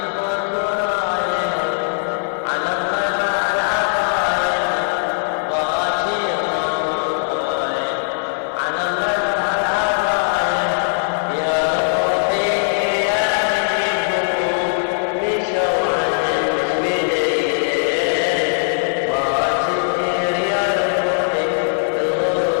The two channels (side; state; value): right; silent; 66 dB below the other